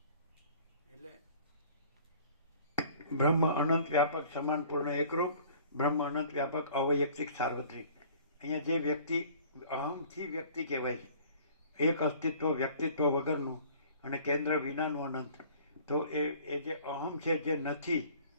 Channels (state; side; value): inverted; both; correlation -0.50